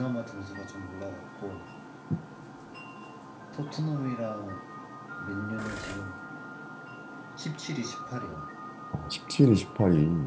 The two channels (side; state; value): both; identical; correlation 1.00